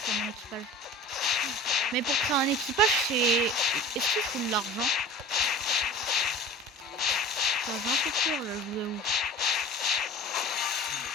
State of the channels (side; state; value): both; normal; correlation 0.39